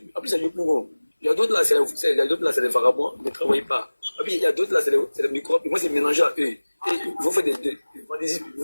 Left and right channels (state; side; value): inverted; both; correlation -1.00